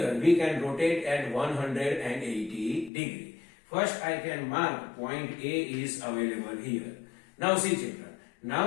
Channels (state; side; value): drops out; right; at 2.9 s